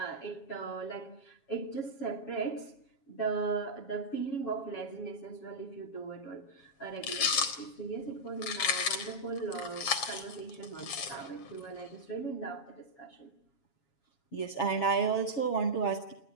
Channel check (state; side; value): late; right; 7.2 ms